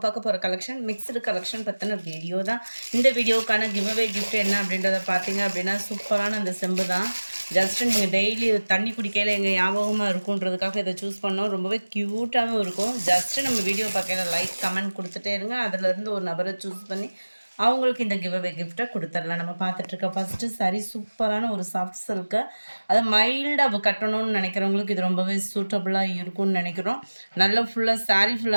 பார்க்க போகிற கலெக்ஷன் மிக்ஸ்டு கலெக்ஷன் பற்றின வீடியோ தான். இந்த வீடியோக்கான கிவ்அவே கிஃப்ட் என்ன அப்படின்றத பார்த்தீங்க அப்படின்னா சூப்பரான அந்த செம்பு தான். ஜஸ்ட்டு நீங்கள் டெய்லி தண்ணி குடிக்கையில் எங்கள் ஞாபகமாக இருக்குன்றதுக்காக இதை சூஸ் பண்ணோம். ரொம்பவே க்யூட்டாகவும் இருக்கும். ஜஸ்ட்டு நம்ம வீடியோ பார்க்கையில் லைக் கமெண்ட் கொடுத்துட்டே இருங்க. அதிலேருந்து ஒரு நபரை சூஸ் பண்ணி அவங்களுக்கு இந்த கிவ்அவே கிஃப்ட்டை கொடுத்துடலாம். நம்ம பார்த்துட்ருக்க ஃபஸ்ட்டு சாரி சூப்பரான ஒரு சாஃப்ட் சில்க்கு. அதை மைல்டாக கட்டணும்னு நினைக்கிறவங்களுக்கு இது ரொம்பவே சூட்டபுளாக இருக்கும்னு நினைக்கிறோம். நல்ல ஃபுல்லாக சாரீ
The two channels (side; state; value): both; inverted; correlation -1.00